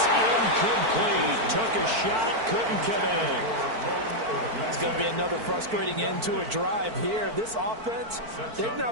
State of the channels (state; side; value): late; left; 4.5 ms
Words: incomplete. Took a shot, couldn't connect. It's going to be another frustrating end to a drive here. This offense, they've